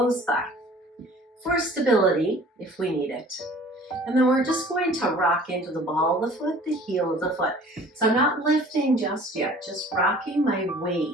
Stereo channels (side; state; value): both; normal; correlation 0.49